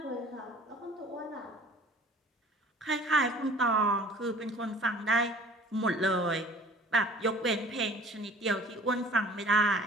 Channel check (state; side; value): normal; both; correlation 0.48